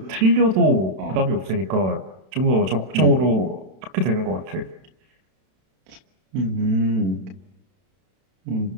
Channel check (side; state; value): left; late; 32 ms